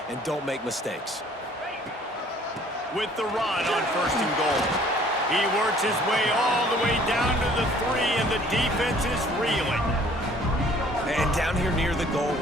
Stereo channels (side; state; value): both; normal; correlation 0.56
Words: and don't make mistakes. With the run on first and goal. He works his way all the way down to the 3, and the defense is reeling. And down here near the goal